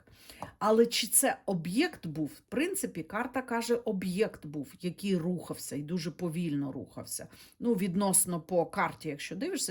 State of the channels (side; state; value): both; identical; correlation 1.00